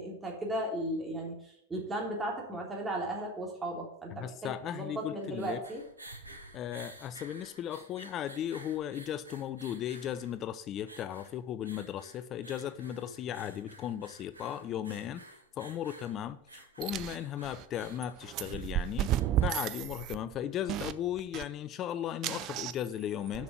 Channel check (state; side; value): normal; both; correlation 0.38